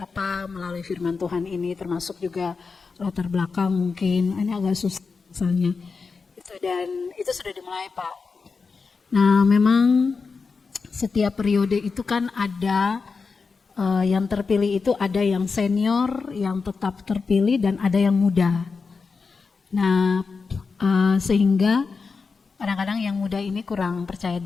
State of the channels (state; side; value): quieter; right; 4.8 dB